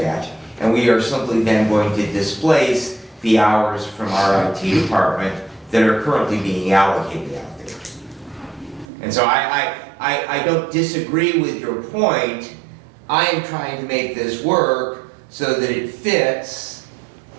and we are simply then going to displace the hours from our IT department that are currently being allocated out there. And so I don't disagree with your point. I am trying to make this work so that it fits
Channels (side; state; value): left; drops out; at 8.8 s